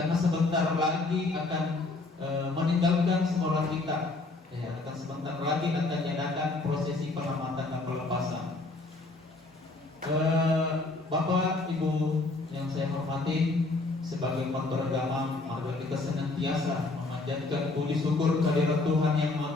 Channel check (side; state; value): right; quieter; 3.3 dB